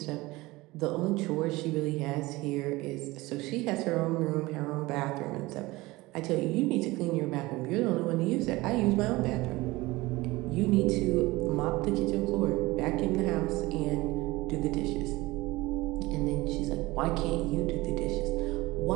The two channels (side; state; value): left; quieter; 20.6 dB